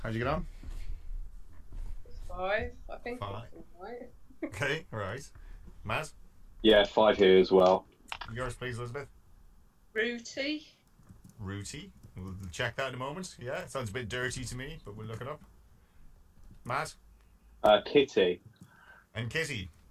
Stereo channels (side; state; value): both; identical; correlation 1.00